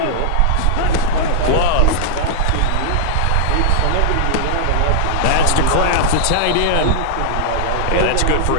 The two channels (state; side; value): different; both; correlation -0.01